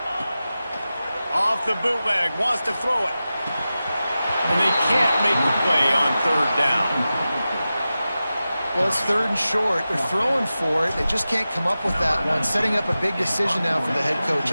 Off the bootleg, wants to throw it. And they can't make the play on 3rd down. Well, it's 3rd and short. They're throwing for it. They just can't come up with that one. Setting up a big decision now for the head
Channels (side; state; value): both; inverted; correlation -0.94